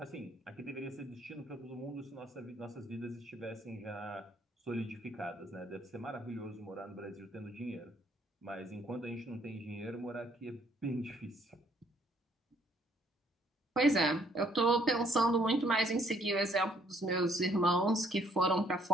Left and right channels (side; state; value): both; normal; correlation 0.66